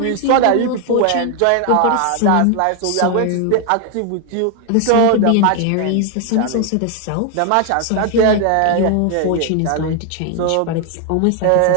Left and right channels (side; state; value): both; different; correlation 0.00